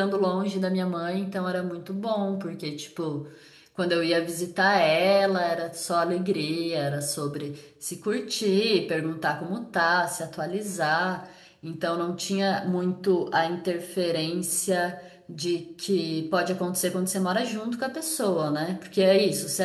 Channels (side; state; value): both; identical; correlation 1.00